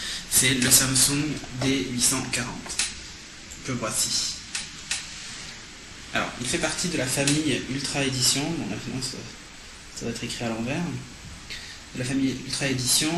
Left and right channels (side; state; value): both; identical; correlation 1.00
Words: c'est le Samsung D840. Que voici. Alors, il fait partie de la famille Ultra Edition, bon là ça va être écrit à l'envers, de la famille Ultra